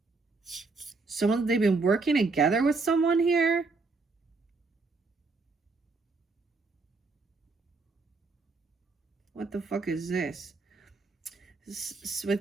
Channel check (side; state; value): left; quieter; 3.8 dB